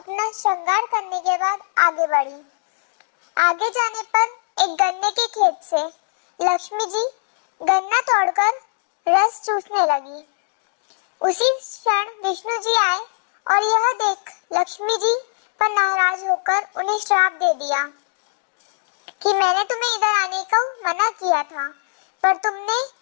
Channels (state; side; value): silent; right; digital silence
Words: श्रृंगार करने के बाद आगे बढ़ी। आगे जाने पर एक गन्ने के खेत से लक्ष्मी जी गन्ना तोड़कर रस चूसने लगी। उसी क्षण विष्णु जी आए और यह देख लक्ष्मी जी पर नाराज होकर उन्हें श्राप दे दिया कि मैंने तुम्हें इधर आने का मना किया था, पर तुमने